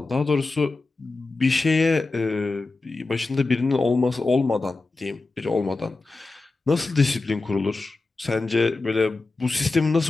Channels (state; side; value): quieter; right; 3.5 dB